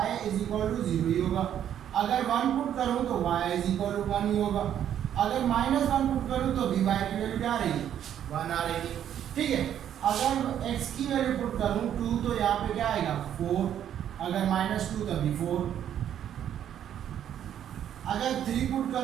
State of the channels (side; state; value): left; quieter; 10.1 dB